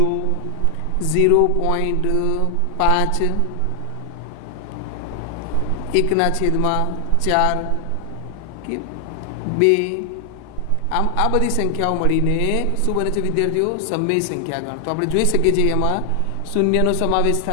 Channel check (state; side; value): different; both; correlation 0.00